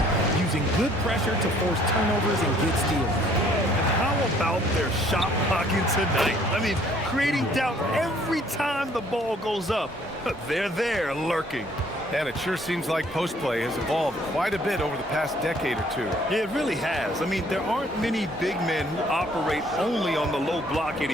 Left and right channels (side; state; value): both; normal; correlation 0.61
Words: using good pressure to force turnovers and get steals. And how about their shot blocking tonight? I mean, creating doubt every time the ball goes up. They're there lurking. And it sure seems like post play has evolved quite a bit over the past decade or two. It really has. I mean, there aren't many big men who operate only on the low block